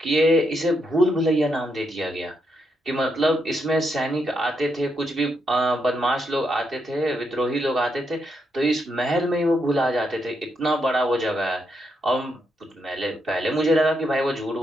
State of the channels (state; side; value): normal; both; correlation 0.80